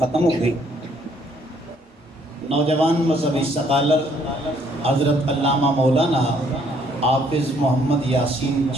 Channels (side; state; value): both; normal; correlation 0.65